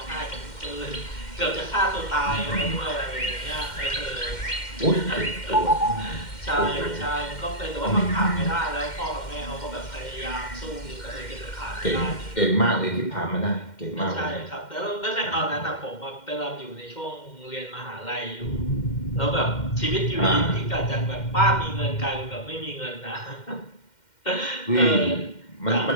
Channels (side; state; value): right; late; 2.1 ms